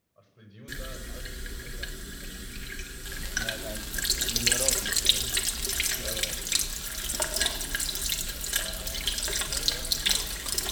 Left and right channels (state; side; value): identical; both; correlation 1.00